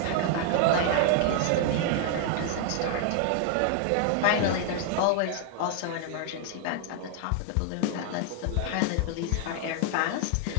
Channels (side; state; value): both; different; correlation 0.00